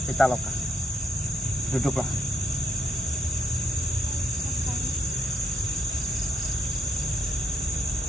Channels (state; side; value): normal; both; correlation 0.76